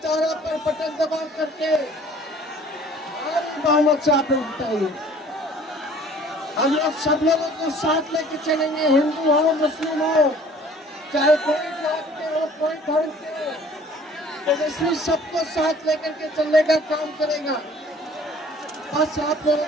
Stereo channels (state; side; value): normal; both; correlation 0.52